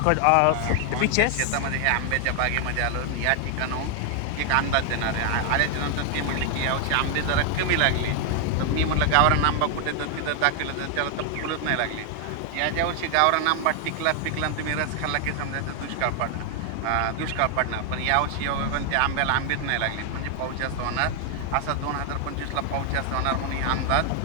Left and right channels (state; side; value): different; both; correlation 0.00